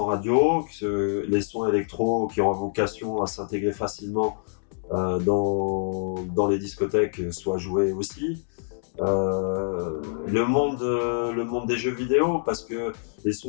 radio, que les sons électro qui ont vocation à s'intégrer facilement dans les discothèques soient joués aussi. Le monde des jeux vidéo, parce que les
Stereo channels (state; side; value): silent; right; digital silence